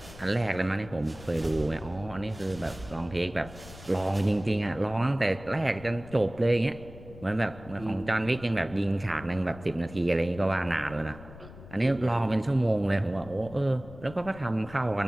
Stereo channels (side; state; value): left; noise; rumble, 17 dB below the sound